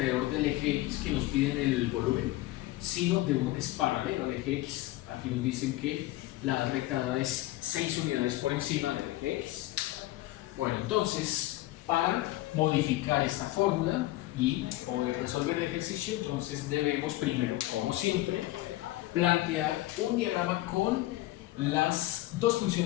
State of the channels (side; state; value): right; quieter; 17.3 dB